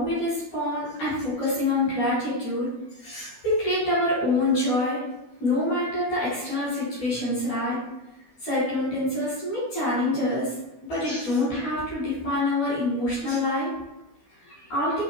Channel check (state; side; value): late; right; 12 ms